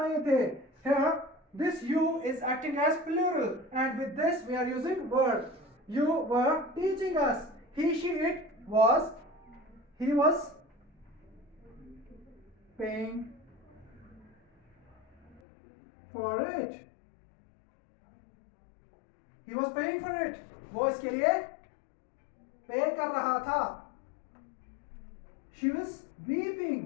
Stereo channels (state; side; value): drops out; right; at 15.4 s